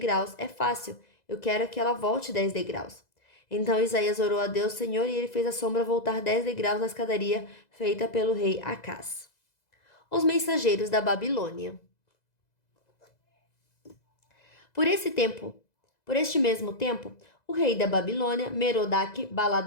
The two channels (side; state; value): right; late; 2.0 ms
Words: é fácil. Eu quero que ela volte 10 degraus. Então Isaías orou a Deus, Senhor, e ele fez a sombra voltar 10 degraus na escadaria feita pelo rei Acás. Os mensageiros da Babilônia. Por esse tempo, Por este mesmo tempo, o rei da Babilônia,